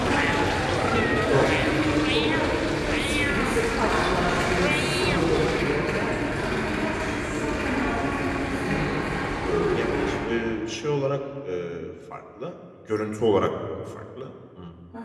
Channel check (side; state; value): both; identical; correlation 1.00